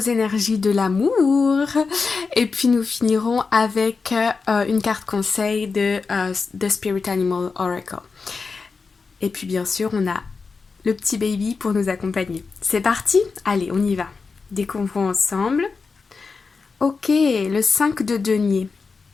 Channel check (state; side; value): quieter; right; 4.7 dB